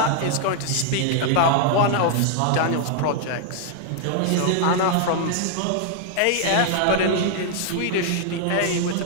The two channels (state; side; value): different; both; correlation 0.00